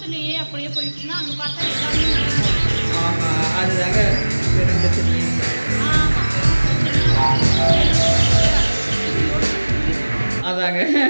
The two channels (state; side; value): inverted; both; correlation -1.00